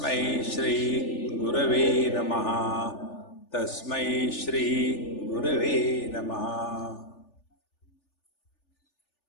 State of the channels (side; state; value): right; late; 3.4 ms